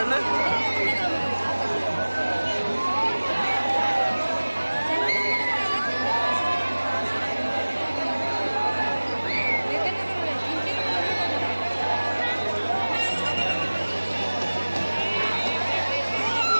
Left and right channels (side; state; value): both; inverted; correlation -1.00